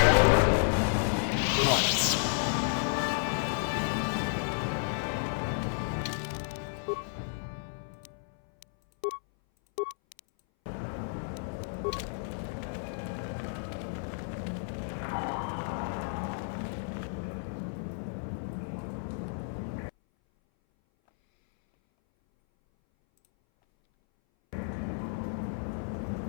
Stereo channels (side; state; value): right; silent; 57 dB below the other